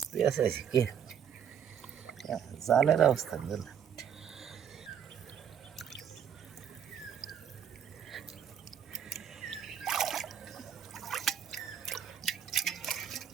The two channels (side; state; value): left; quieter; 8.6 dB